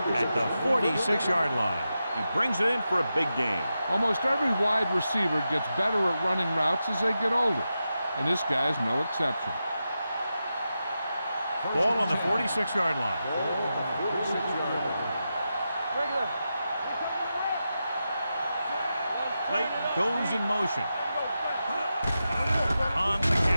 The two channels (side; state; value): both; inverted; correlation -0.89